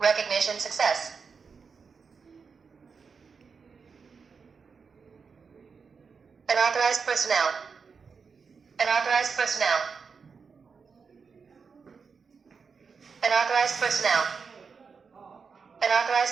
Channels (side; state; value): left; quieter; 5.5 dB